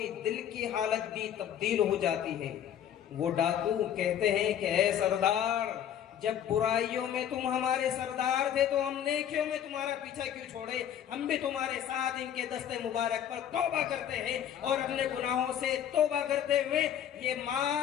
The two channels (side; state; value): right; quieter; 9.8 dB